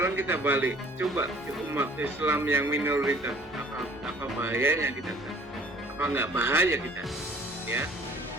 kita balik, coba umat Islam yang minoritas, apa bahayanya kita? Apa nggak bahaya kita? Ya.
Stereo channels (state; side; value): normal; both; correlation 0.53